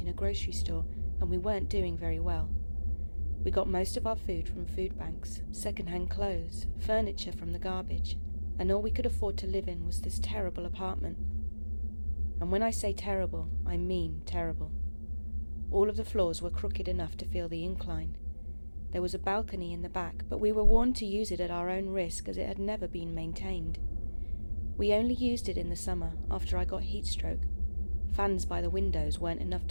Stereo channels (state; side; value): inverted; both; correlation -1.00